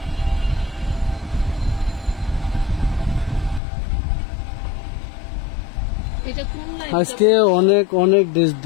আজকে অনেক অনেক ড্রেস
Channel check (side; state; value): right; drops out; at 3.6 s